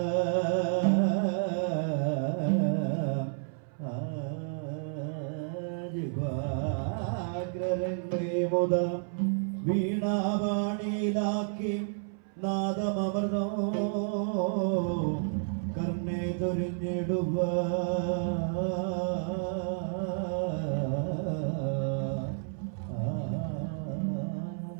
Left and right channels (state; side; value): silent; left; 57 dB below the other